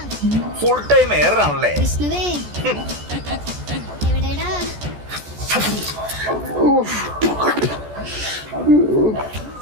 ഫുൾ ടൈം എയറാണല്ലേ?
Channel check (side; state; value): left; late; 14 ms